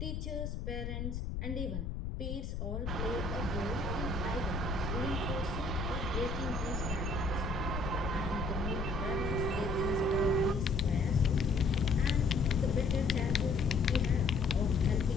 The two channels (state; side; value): noise; left; rumble, 4 dB below the sound